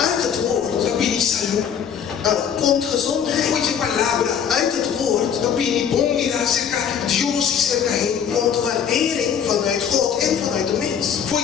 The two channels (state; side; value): quieter; right; 8.0 dB